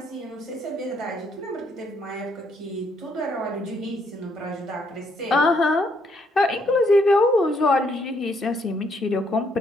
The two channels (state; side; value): normal; both; correlation 0.72